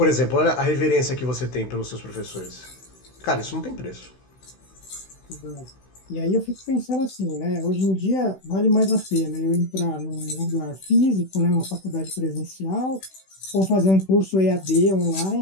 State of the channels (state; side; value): late; right; 16 ms